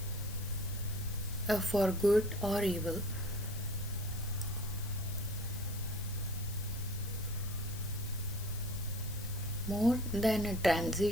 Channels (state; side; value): noise; left; hiss, 14 dB below the sound